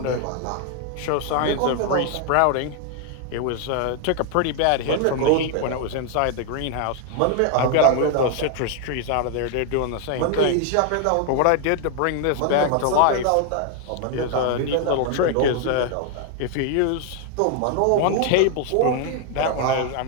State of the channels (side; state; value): both; different; correlation 0.00